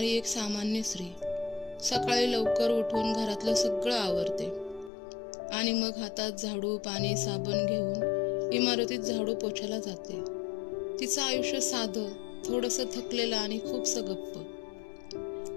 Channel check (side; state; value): right; drops out; at 4.9 s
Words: एक सामान्य स्त्री, सकाळी लवकर उठून घरातलं सगळं आवरते आणि मग हातात झाडू, पाणी, साबण घेऊन इमारतीत झाडू पोछायला जाते. तिचं आयुष्य साधं, थोडंसं थकलेलं आणि खूपसं गप्प.